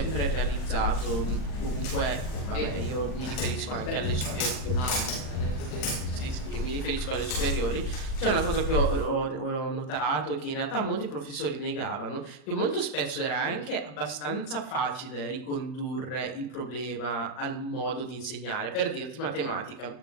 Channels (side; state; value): right; late; 39 ms